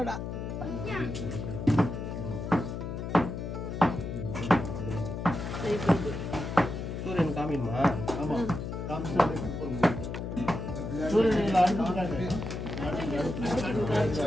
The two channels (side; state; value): left; noise; hum, 5 dB below the sound